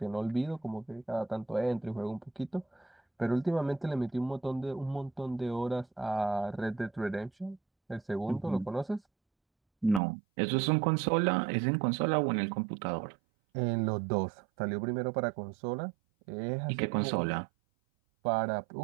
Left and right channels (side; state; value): left; drops out; at 10.0 s